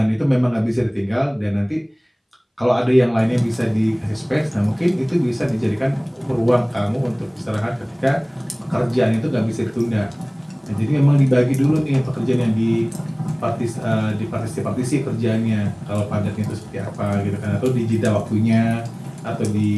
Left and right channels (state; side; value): identical; both; correlation 1.00